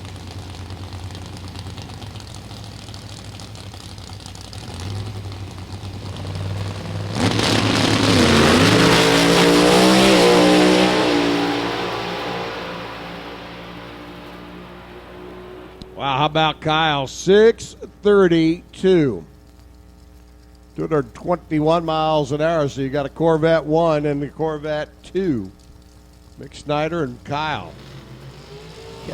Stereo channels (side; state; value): both; identical; correlation 1.00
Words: Wow, how about Kyle? 632. 221 miles an hour. So you got a Corvette 1 and the Corvette 2. Mick Snyder and Kyle